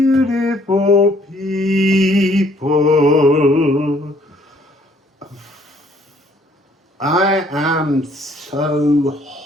people. I am so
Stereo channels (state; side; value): normal; both; correlation 0.62